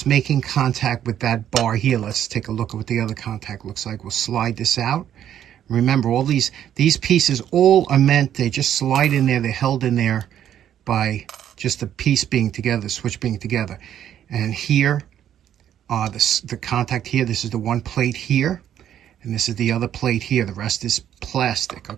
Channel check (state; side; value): quieter; left; 10.4 dB